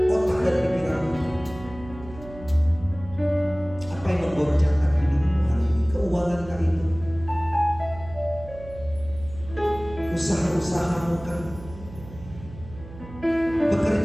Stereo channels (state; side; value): noise; right; hum, 16 dB below the sound